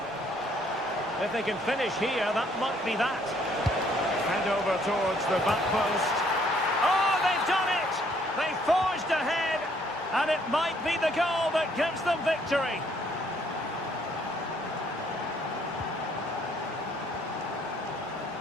If they can finish here, that might be that. Hand over towards the back post. Oh, they've done it! They forged ahead, and it might be the goal that gives them victory.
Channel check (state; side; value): normal; both; correlation 0.65